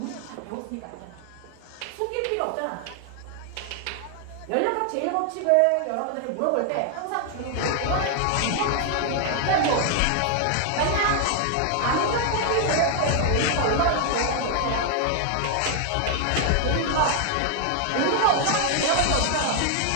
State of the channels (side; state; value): both; different; correlation 0.00